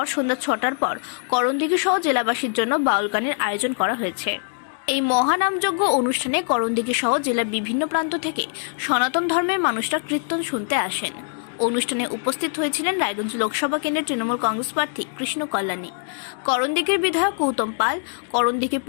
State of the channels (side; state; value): right; silent; digital silence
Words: সন্ধ্যা ৬টার পর করণদিঘি সহ জেলাবাসীর জন্য বাউল গানের আয়োজন করা হয়েছে। এই মহানামযজ্ঞ অনুষ্ঠানে করণদিঘি সহ জেলার বিভিন্ন প্রান্ত থেকে সনাতন ধর্মের মানুষরা কীর্তন শুনতে আসেন। অনুষ্ঠানে উপস্থিত হয়েছিলেন রায়গঞ্জ লোকসভা কেন্দ্রের তৃণমূল কংগ্রেস প্রার্থী কৃষ্ণ কল্যাণী, করণদিঘির বিধায়ক গৌতম পাল, করণদিঘি